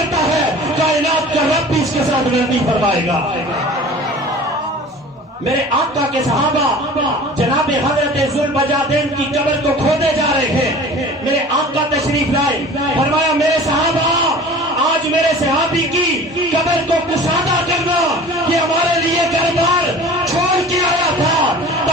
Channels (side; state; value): both; normal; correlation 0.42